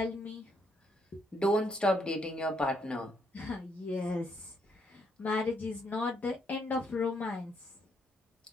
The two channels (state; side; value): normal; both; correlation 0.74